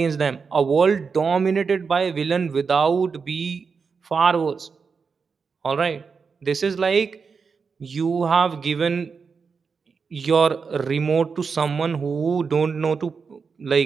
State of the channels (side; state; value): left; quieter; 5.4 dB